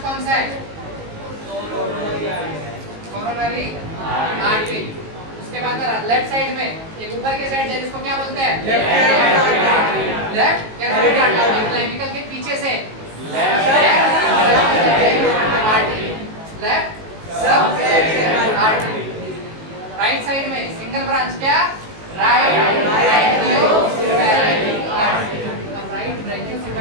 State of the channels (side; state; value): left; late; 19 ms